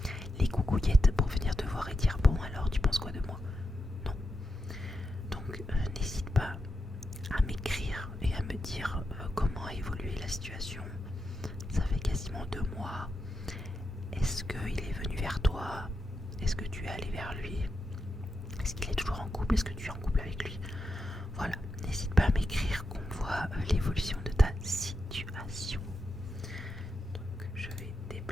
les coucouillettes pour venir te voir et dire bon alors tu penses quoi de moi? Non. Donc n'hésite pas à m'écrire et à me dire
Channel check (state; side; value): normal; both; correlation 0.87